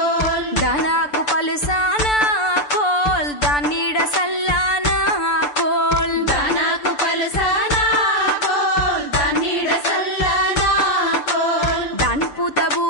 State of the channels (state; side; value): late; right; 6.8 ms